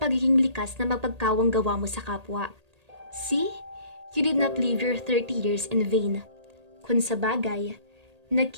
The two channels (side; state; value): left; late; 1.8 ms